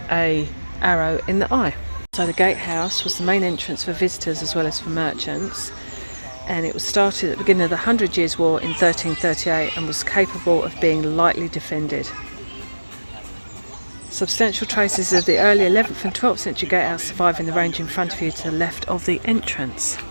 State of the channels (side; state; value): both; inverted; correlation -1.00